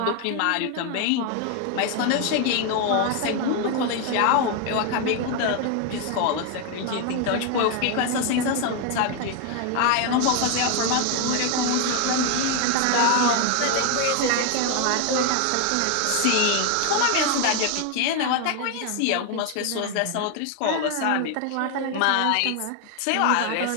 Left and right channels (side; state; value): both; different; correlation 0.01